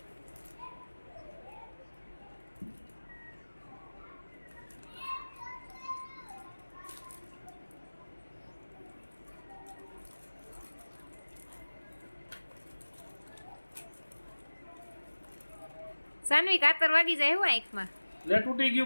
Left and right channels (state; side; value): inverted; both; correlation -1.00